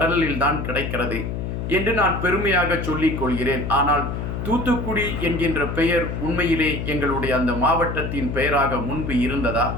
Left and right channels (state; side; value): noise; left; hum, 4 dB below the sound